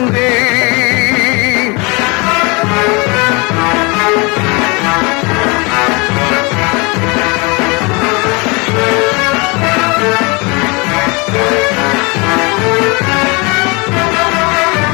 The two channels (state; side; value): quieter; right; 28.4 dB